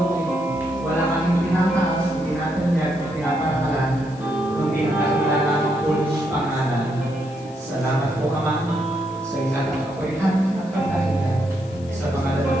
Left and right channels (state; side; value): noise; left; hiss, 24 dB below the sound